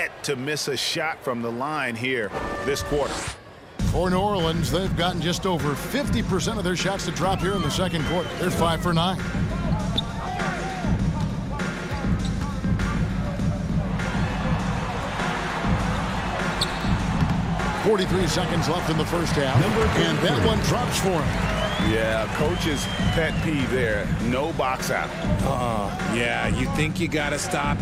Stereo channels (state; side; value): identical; both; correlation 1.00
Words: to miss a shot from the line here this quarter. For New Orleans, they've gotten just over 50% of their shots to drop here in the second quarter. They're 5 for 9. .43 seconds left in the first half, and that one drops for him. Yeah, coach's pet peeve there. No box out. Yeah, you think you got to stop,